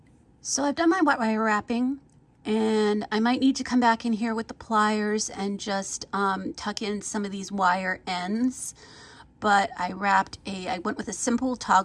So I've done my wire wrapping, and I might need to come back in here with the pliers and just tuck in some of these wire ends. But I went with a simple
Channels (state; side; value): identical; both; correlation 1.00